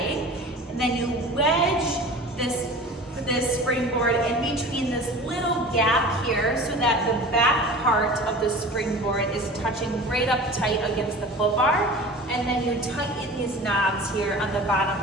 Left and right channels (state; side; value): normal; both; correlation 0.38